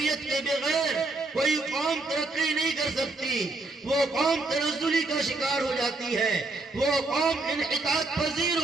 کے بغیر کوئی قوم ترقی نہیں کر سکتی، وہ قوم تنزلی کا شکار ہو جاتی ہے، وہ قوم انحطاط پذیر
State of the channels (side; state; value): left; quieter; 3.2 dB